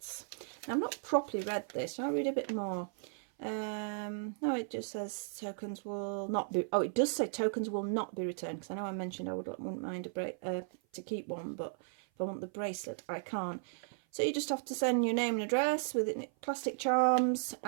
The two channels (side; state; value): left; silent; 54 dB below the other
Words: Now I've not properly read this. Shall I read a bit more? No, it just says tokens will not be, oh, it does say tokens will not be returned, because I know I mentioned I wouldn't mind to keep one, but if I want the bracelet I can't. So you just have to send your name and address with plastic charms,